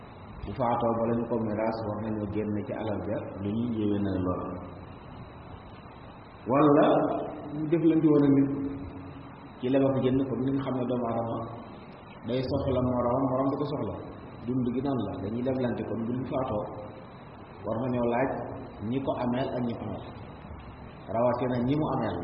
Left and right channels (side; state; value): both; identical; correlation 1.00